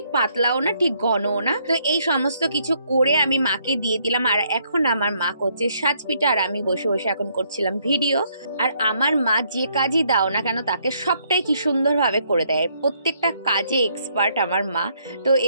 পাতলাও না, ঠিক ঘনও না। তো এই সমস্ত কিছু করে আমি মাকে দিয়ে দিলাম। আর এখন আমার মা করছে সাজ পিঠা, আর আমি বসে বসে এখন করছিলাম ভিডিও। আর আমার মা যে কাজই দাও না কেন তাকে সবটাই কি সুন্দরভাবে করে দেয়, প্রত্যেকটা কাজে এক্সপার্ট আমার মা। তো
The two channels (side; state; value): both; inverted; correlation -0.70